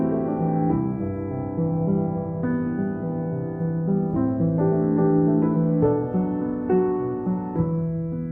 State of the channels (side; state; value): both; identical; correlation 1.00